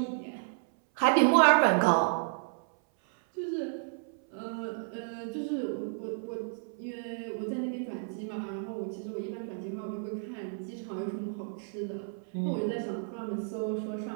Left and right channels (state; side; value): silent; left; 57 dB below the other